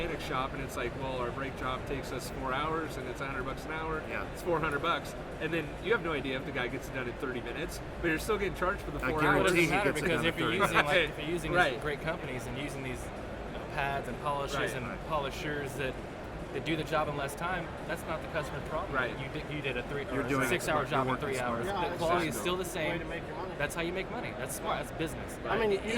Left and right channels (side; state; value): both; identical; correlation 1.00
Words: shop and it's like, well, our brake job takes us 4 hours and it's $100 an hour. Yeah. It's $400. And then you have no idea if the guy gets it done in 30 minutes, but you're still getting charged for the 4 Well, it hours. doesn't he matter gets it because done if you're in using 30 like, if you're using Right. these great companies and using these pads and polishers and polishers that do the job in less time, that's not the customer's problem. Right. You did a You're doing 6-hour it- job you're in 3 working hours. smart. The quality is still the same. Way to make your money. That's how you make money. That's smart. That's business. I mean, you